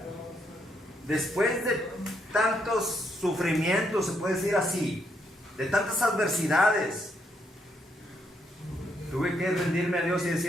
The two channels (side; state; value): both; normal; correlation 0.76